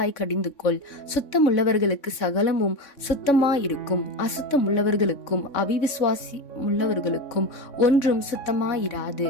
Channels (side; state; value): right; late; 3.6 ms